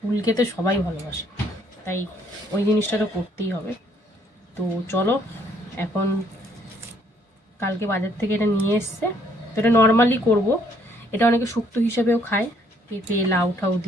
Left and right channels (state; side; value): normal; both; correlation 0.66